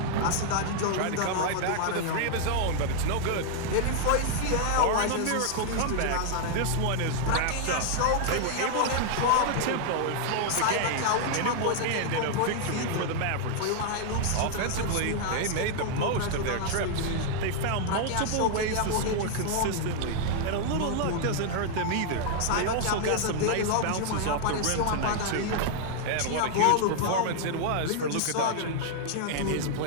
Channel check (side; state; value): both; different; correlation 0.00